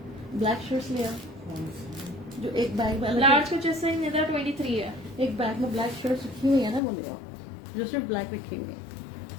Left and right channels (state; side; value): drops out; right; at 6.8 s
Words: ब्लैक शर्ट्स लिया, जो एक बैग में लार्ज को जैसे निदा 23 है। एक बैग में ब्लैक शर्ट्स रखी हुई है ना, वो लिया जो सिर्फ ब्लैक रखी हुई है।